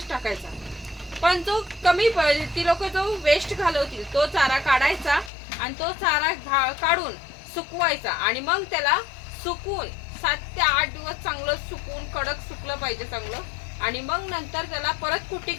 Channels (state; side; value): drops out; right; at 5.3 s